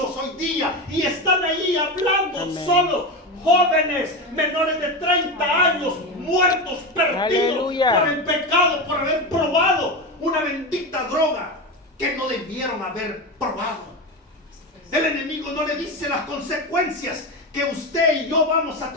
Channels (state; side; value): normal; both; correlation 0.19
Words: hoy día y están ahí hablando. Amén. Solo jóvenes menores de 30 años muertos, perdidos. Aleluya. Por el pecado, por haber probado una bendita droga que no debieron haber probado. El enemigo no le dice las consecuencias que usted y yo vamos a